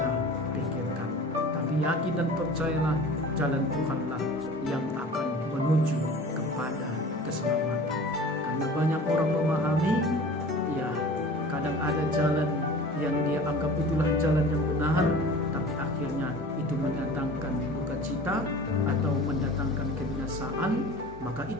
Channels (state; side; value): normal; both; correlation 0.41